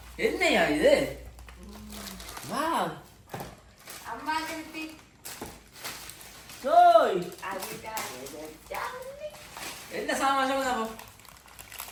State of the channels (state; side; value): identical; both; correlation 1.00